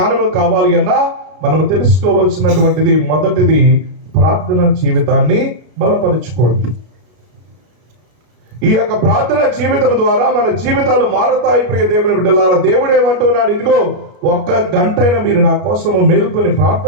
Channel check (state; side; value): late; left; 33 ms